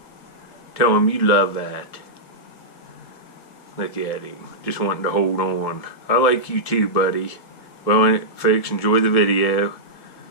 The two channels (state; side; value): late; right; 1.7 ms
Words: Tell him you love that. Look at him. Just wanting to hold on. I like you too, buddy. Well, folks, enjoy the video.